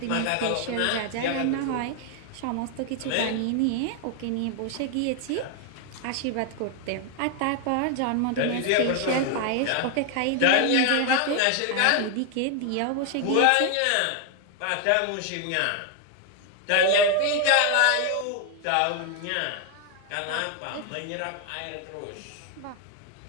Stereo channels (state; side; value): different; both; correlation 0.01